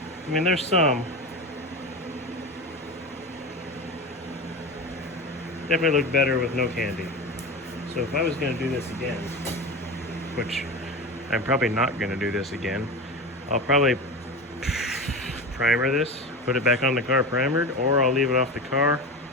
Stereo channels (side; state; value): both; normal; correlation 0.26